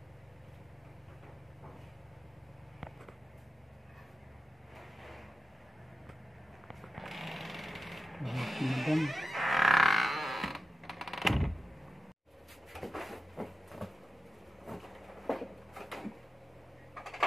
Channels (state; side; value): normal; both; correlation 0.91